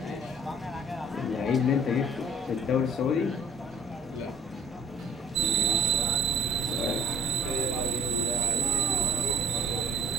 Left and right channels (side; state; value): both; normal; correlation 0.53